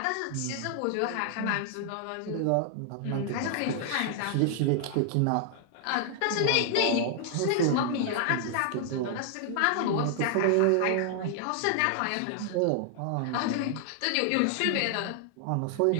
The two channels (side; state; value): both; different; correlation 0.00